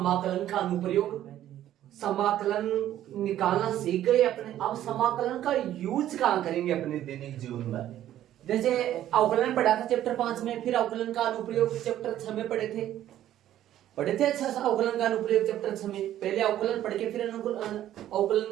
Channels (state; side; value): quieter; left; 12.3 dB